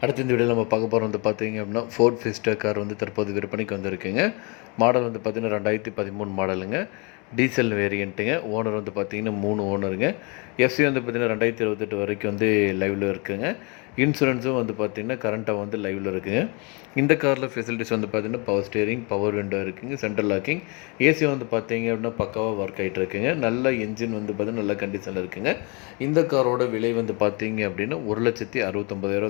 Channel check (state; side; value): quieter; right; 30.9 dB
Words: அடுத்த இந்த வீடியோவில் நம்ம பார்க்க போகிறோம் வந்து பார்த்தீங்க அப்படின்னா ஃபோர்ட் ஃபிஸ்டா கார் வந்து தற்போது விற்பனைக்கு வந்திருக்குங்க. மாடல் வந்து பார்த்தீங்கன்னா 2013 மாடலுங்க. டீசல் வேரியண்ட்டுங்க. ஓனர் வந்து பார்த்தீங்கன்னா 3 ஓனருங்க. எஃப்சி வந்து பார்த்தீங்கன்னா 2028 வரைக்கும் வந்து லைவில் இருக்குங்க. இன்சூரன்ஸும் வந்து பார்த்தீங்கன்னா கரண்ட்டாக வந்து லைவில் இருக்குங்க. இந்த காரில் ஃபெசிலிட்டிஸ் வந்து பார்த்தீங்கன்னா பவர் ஸ்டேரிங், பவர் விண்டோ இருக்குங்க, சென்ட்ரல் லாக்கிங், ஏசி வந்து பார்த்தீங்க அப்படின்னா பக்காவாக ஒர்க் ஆகிட்டு இருக்குங்க. நல்ல என்ஜின் வந்து பார்த்தீங்கன்னா நல்ல கண்டிஷனில் இருக்குங்க. இந்த காரோட விலை வந்து பார்த்தீங்க அப்படின்னா